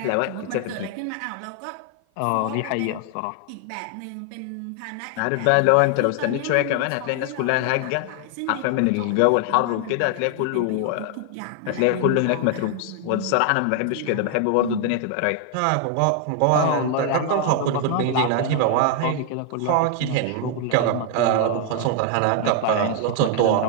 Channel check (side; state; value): both; different; correlation 0.00